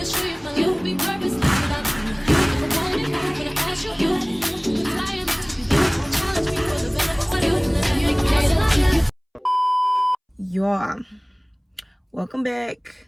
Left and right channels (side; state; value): both; identical; correlation 1.00